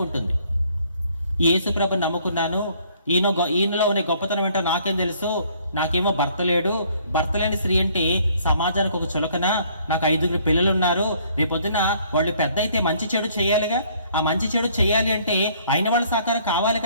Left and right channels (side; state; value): both; inverted; correlation -0.62